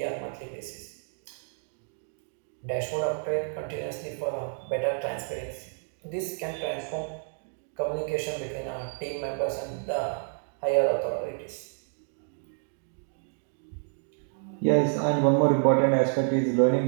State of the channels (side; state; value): left; silent; 58 dB below the other